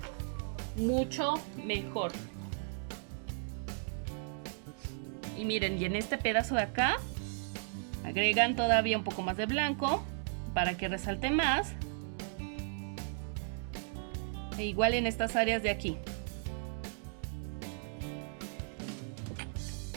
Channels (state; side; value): silent; left; 54 dB below the other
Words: mucho mejor. Y miren, y en este pedazo de acá agregan todavía un poco más de blanco para que resalte más. E igual en estas áreas de aquí.